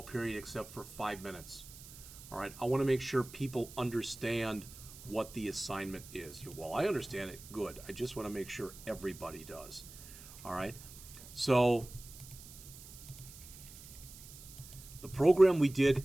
period except for 5 minutes. All right, I want to make sure people understand what the assignment is. Well, I understand it, good. I just want to make sure everybody does. All right, so the program we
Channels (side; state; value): right; noise; hiss, 16 dB below the sound